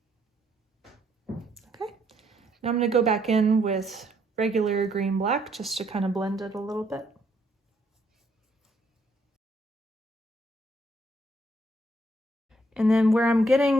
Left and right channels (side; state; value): both; normal; correlation 0.71